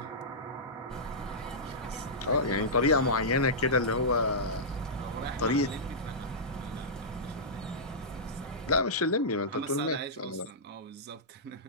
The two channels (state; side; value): normal; both; correlation -0.15